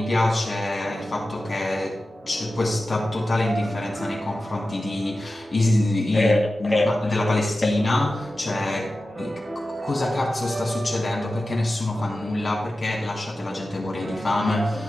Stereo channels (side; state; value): both; normal; correlation 0.94